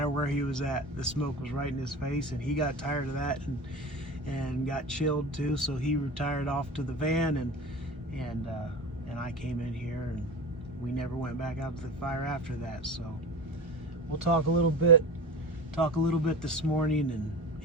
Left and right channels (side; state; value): both; normal; correlation 0.30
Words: where he was at, the smoke was right in his face, and he got tired of that and got chilled too. So he retired off to the van, and I came in here, and we never went back out to the fire after that. So we'll talk a little bit this morning, and